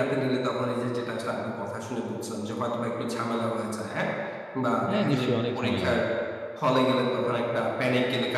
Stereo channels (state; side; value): identical; both; correlation 1.00